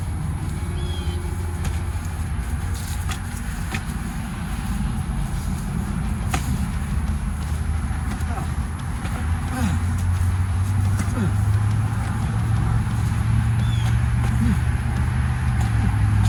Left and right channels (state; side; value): identical; both; correlation 1.00